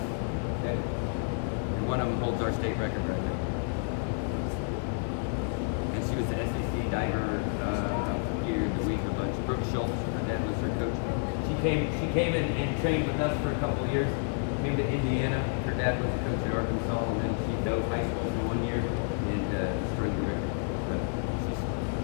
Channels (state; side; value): silent; right; 58 dB below the other